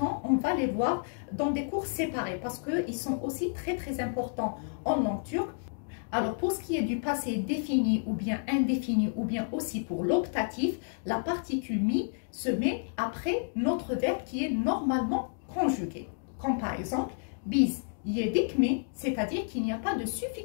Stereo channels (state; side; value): silent; right; digital silence